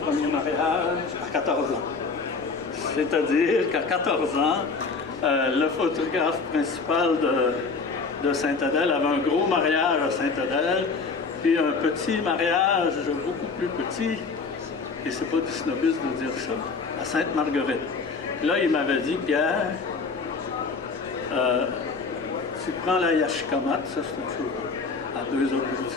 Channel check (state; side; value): quieter; right; 4.5 dB